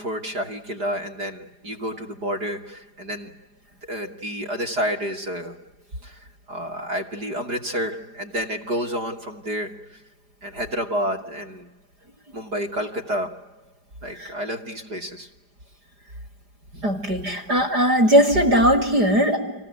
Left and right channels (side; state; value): left; late; 4.9 ms